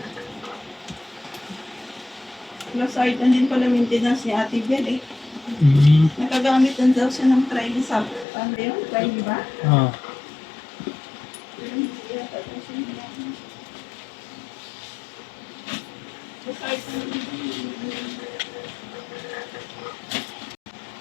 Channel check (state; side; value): drops out; right; at 8.2 s